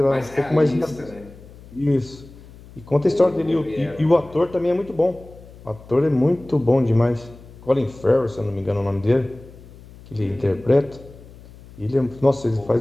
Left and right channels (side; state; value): left; noise; hum, 20 dB below the sound